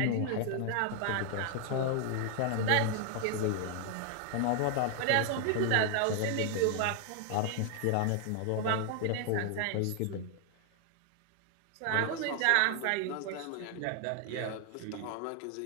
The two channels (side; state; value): both; different; correlation 0.00